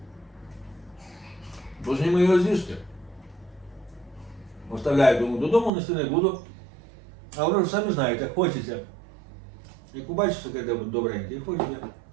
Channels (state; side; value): drops out; left; at 5.7 s